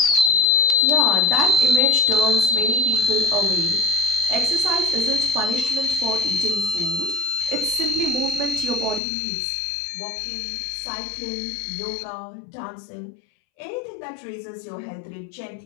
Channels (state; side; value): drops out; right; at 9.0 s